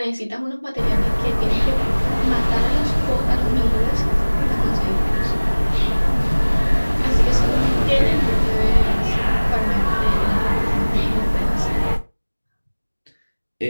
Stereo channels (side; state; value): both; inverted; correlation -1.00